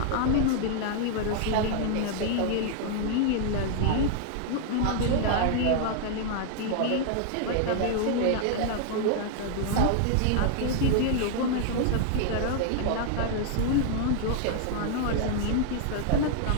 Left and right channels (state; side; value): different; both; correlation 0.00